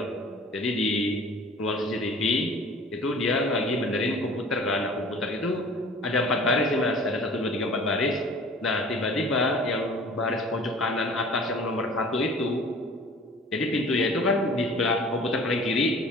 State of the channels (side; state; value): both; normal; correlation 0.46